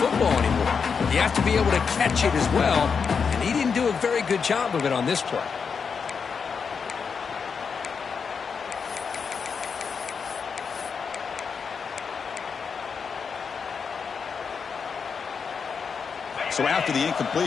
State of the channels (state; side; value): quieter; right; 5.9 dB